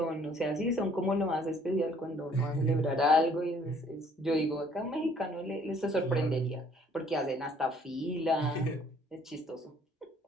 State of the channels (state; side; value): normal; both; correlation 0.60